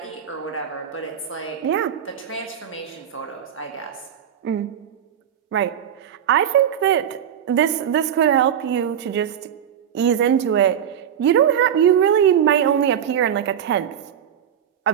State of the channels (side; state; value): left; quieter; 9.2 dB